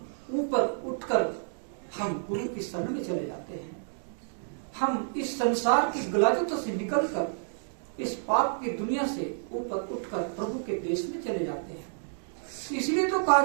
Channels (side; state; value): left; silent; digital silence